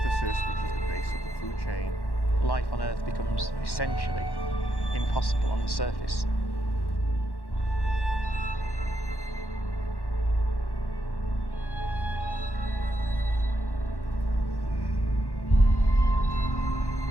which is the base of the food chain. Life on Earth becomes essentially impossible on the surface.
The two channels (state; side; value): late; right; 1.1 ms